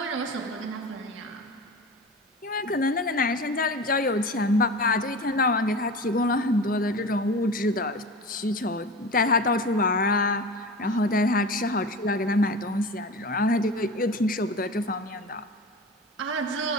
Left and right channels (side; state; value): both; normal; correlation 0.32